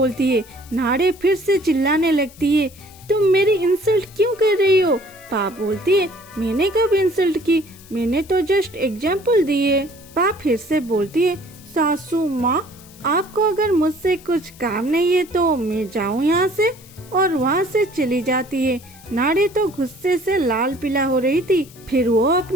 है। नाड़े फिर से चिल्लाने लगती है, तुम मेरी इंसल्ट क्यों कर रही हो। पा बोलती है, मैंने कब इंसल्ट की, मैंने तो जस्ट एग्जाम्पल दिए। पा फिर से बोलती है, सासू माँ आपको अगर मुझसे कुछ काम नहीं है तो मैं जाऊँ यहाँ से, और वहाँ से चली जाती है। नाड़े तो गुस्से से लाल पीला हो रही थी। फिर वो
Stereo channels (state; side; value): noise; left; hiss, 23 dB below the sound